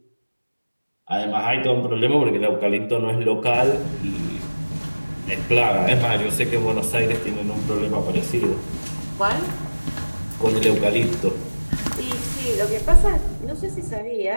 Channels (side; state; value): both; inverted; correlation -1.00